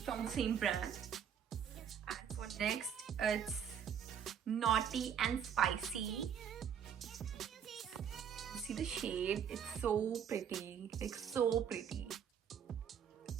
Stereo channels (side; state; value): left; quieter; 8.2 dB